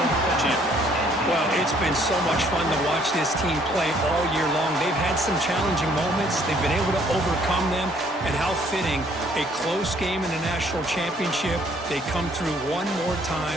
champions. Well, it's been so much fun to watch this team play all year long. They've had some challenging moments. They've been able to overcome them. And how fitting, a close game in the national championship. They come through one more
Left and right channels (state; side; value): normal; both; correlation 0.63